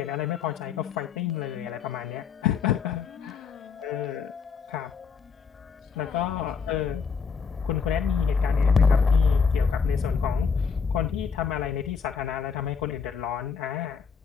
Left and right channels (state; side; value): quieter; right; 5.9 dB